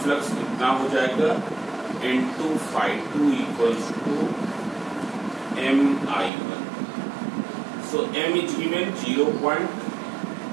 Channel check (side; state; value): left; drops out; at 6.3 s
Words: फ्लक्स कितना हो जाएगा? N2∅2 equals to Mi1. So M is given